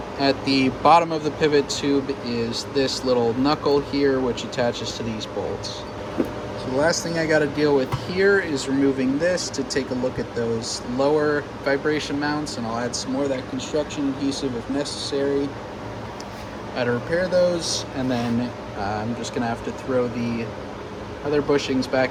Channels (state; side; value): identical; both; correlation 1.00